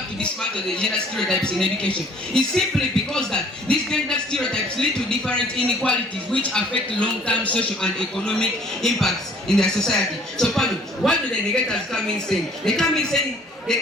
to dismantle the gender stereotypes in education? It's simply because that these gender stereotypes lead to different inequalities which affect long-term social and economic impacts in their society. So, Pano, what do the negators come in saying? They come in saying,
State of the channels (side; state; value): both; normal; correlation 0.57